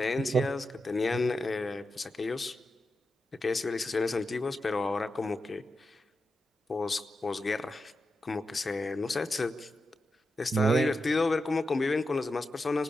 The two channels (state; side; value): normal; both; correlation 0.89